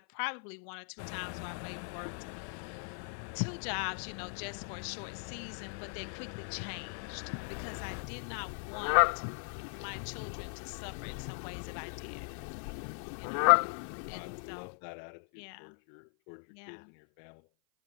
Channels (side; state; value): right; silent; 53 dB below the other